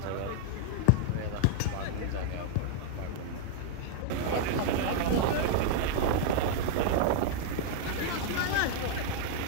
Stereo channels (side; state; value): both; different; correlation -0.01